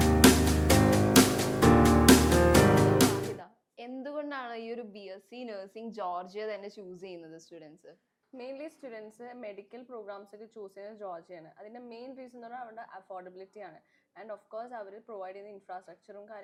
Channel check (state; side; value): identical; both; correlation 1.00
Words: എന്തുകൊണ്ടാണ് ഈ ഒരു BSc നഴ്സിംഗ് ജോർജിയ തന്നെ ചൂസ് ചെയ്യുന്നത് students? Mainly students medical programmes ഒക്കെ ചൂസ് ചെയ്യുന്നത് ജോർജിയാണ്. അതിൻ്റെ മെയിൻ റീസൺ എന്ന് പറഞ്ഞാൽ അവരുടെ അഫോർഡബിലിറ്റി ആണ്. ആൻഡ് ഓഫ് കോഴ്സ് അവർ പ്രൊവൈഡ് ചെയ്യുന്ന ഇൻഫ്രാസ്ട്രക്ചറും